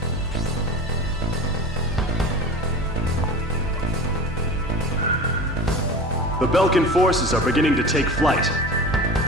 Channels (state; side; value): normal; both; correlation 0.33